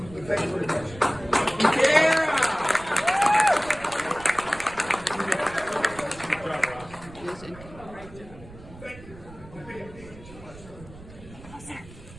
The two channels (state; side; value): noise; right; rumble, 18 dB below the sound